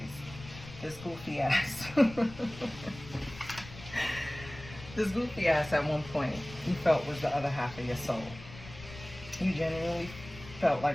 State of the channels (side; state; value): left; noise; rumble, 16 dB below the sound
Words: This goofy ass. This goofy ass at one point you felt was the other half of your soul. You genuinely felt